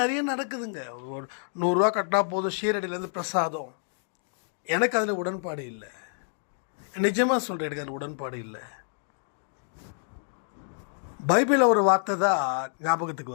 நிறைய நடக்குதுங்க. ஒரு 100 ரூபா கட்டினா போதும், ஷீரடியிலேருந்து பிரசாதம். எனக்கு அதில் உடன்பாடு இல்லை. நிஜமாக சொல்கிறேன், எனக்கு அதில் உடன்பாடு இல்லை. பைபிளில் ஒரு வார்த்தை தான் ஞாபகத்துக்கு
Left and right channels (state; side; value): silent; right; digital silence